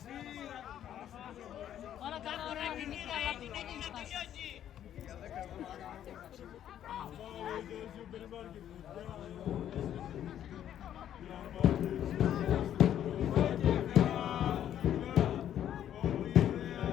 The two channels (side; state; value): right; quieter; 10.6 dB